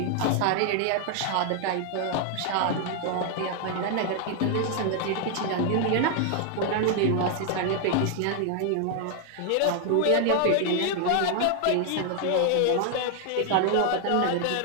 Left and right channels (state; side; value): different; both; correlation 0.00